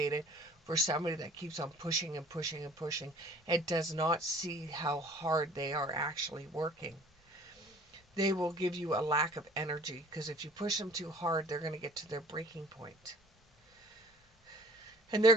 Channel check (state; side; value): normal; both; correlation 0.51